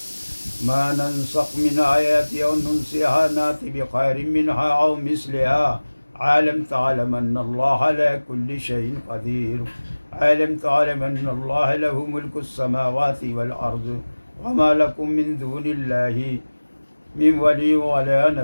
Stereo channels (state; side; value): inverted; both; correlation -1.00